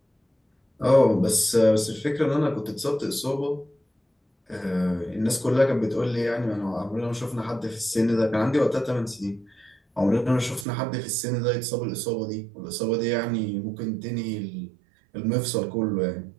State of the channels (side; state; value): left; drops out; at 10.7 s